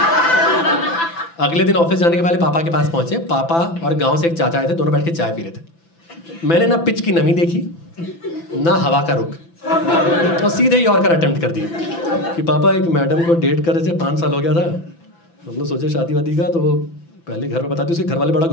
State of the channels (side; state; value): right; late; 6.0 ms